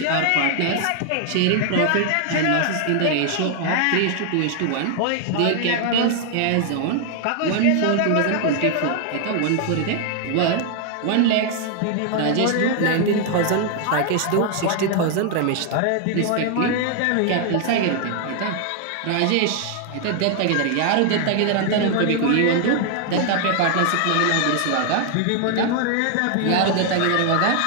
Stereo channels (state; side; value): different; both; correlation 0.00